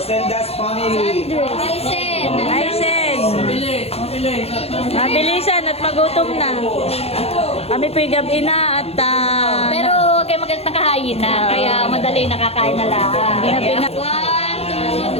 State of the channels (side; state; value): right; late; 0.29 ms